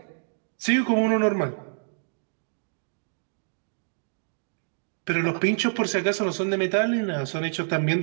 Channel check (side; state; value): left; silent; digital silence